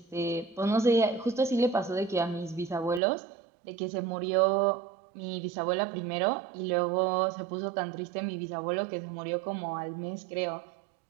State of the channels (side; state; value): left; drops out; at 3.0 s